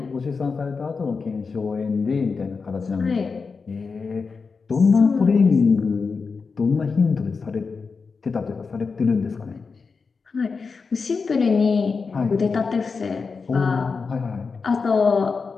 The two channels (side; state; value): right; quieter; 4.9 dB